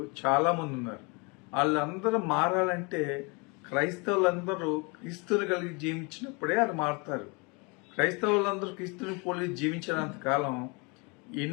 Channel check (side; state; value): right; quieter; 30.3 dB